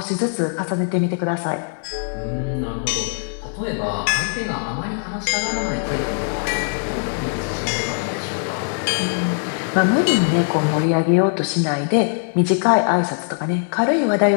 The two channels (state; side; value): silent; right; digital silence